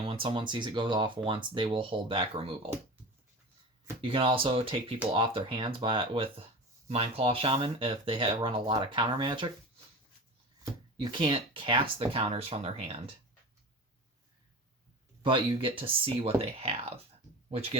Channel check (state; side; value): normal; both; correlation 0.32